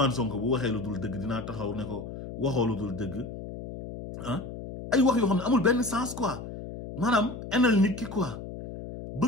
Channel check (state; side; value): noise; left; hum, 10 dB below the sound